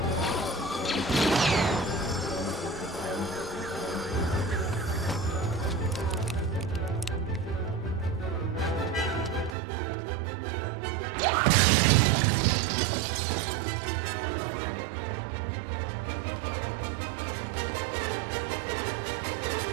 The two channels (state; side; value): drops out; left; at 9.6 s